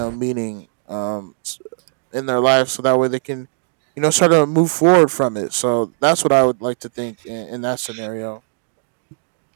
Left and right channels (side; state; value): left; silent; digital silence